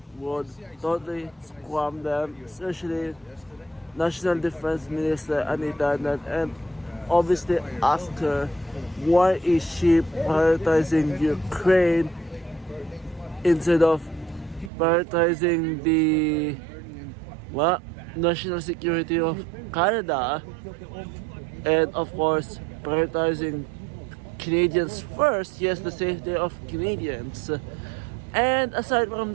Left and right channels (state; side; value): drops out; left; at 14.7 s